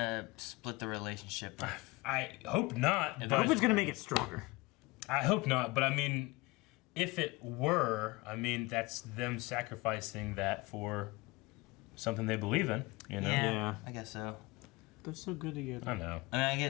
split the relationship. I hope not. I hope it's gonna make it stronger. I hope not, but I mean, if it were, I mean, that's them sacrificing that for something they believe in, you know? Yeah. I guess so. They're so good together. I know. I mean, I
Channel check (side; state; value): right; quieter; 23.0 dB